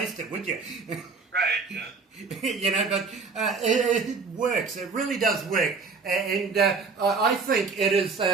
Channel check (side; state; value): left; quieter; 4.7 dB